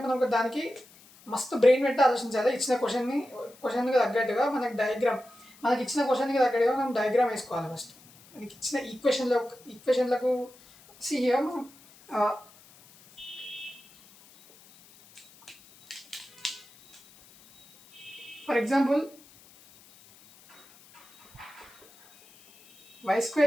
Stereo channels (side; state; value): left; noise; hiss, 25 dB below the sound